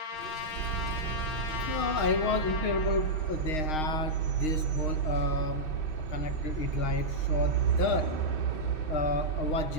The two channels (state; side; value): late; right; 6.4 ms